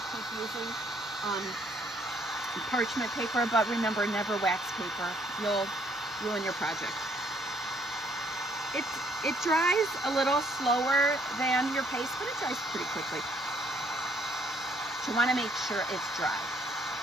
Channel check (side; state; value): both; normal; correlation 0.66